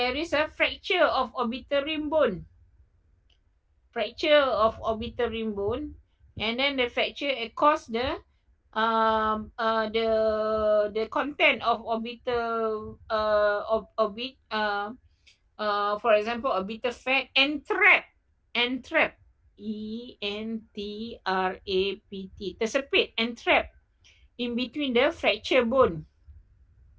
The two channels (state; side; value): identical; both; correlation 1.00